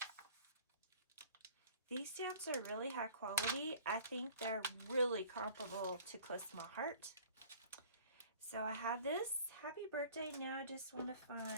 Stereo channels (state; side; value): inverted; both; correlation -0.49